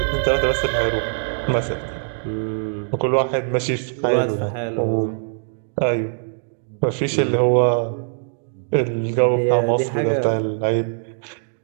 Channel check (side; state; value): left; silent; digital silence